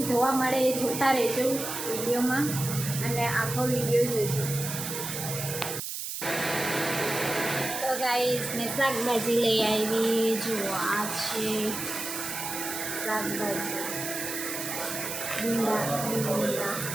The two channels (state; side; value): noise; right; hiss, 5 dB below the sound